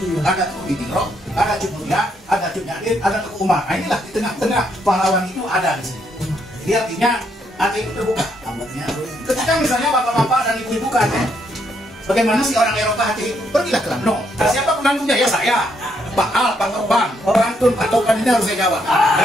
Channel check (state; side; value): normal; both; correlation 0.74